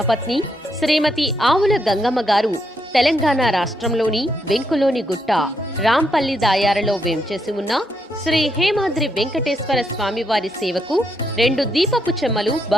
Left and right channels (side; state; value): both; normal; correlation 0.78